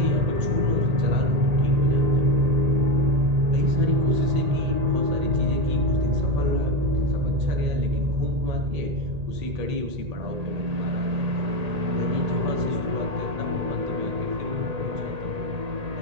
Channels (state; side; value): late; left; 1.8 ms